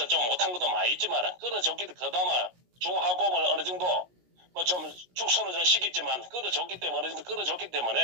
좀 못한 것도 많이 있지만 끌어줬기 그나마 중하고을 어느 정도 뭐 좀 축소는 좀 시켰지만 끌어줬기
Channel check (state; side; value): late; left; 17 ms